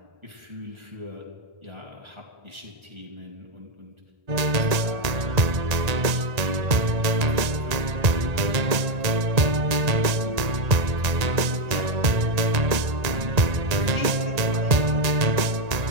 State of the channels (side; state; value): left; late; 1.8 ms